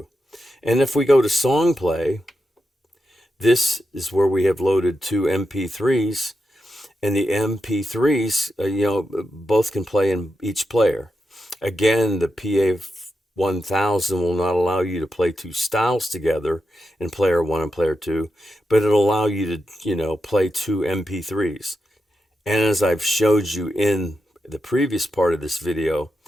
And if we go to song play, this is where we have loaded 2 MP3s, and the MP3s, you know, both can play in each player. Again, the PA1000 will not allow you to play 2 styles together in player 1 and player 2, but it'll allow you to, you know, play 2 MP3s. And as I've showed you in the previous part of this video,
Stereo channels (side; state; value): both; normal; correlation 0.87